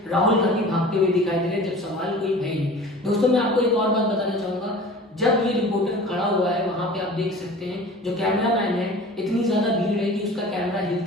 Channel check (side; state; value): both; normal; correlation 0.41